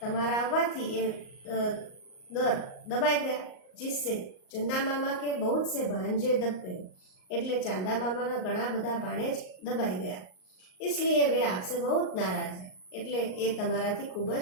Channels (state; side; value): late; right; 38 ms